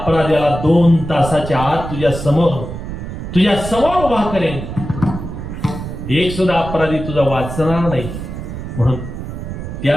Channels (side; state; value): right; noise; rumble, 8 dB below the sound